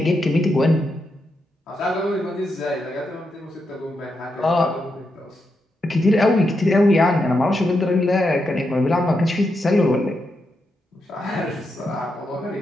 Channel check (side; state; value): both; normal; correlation 0.84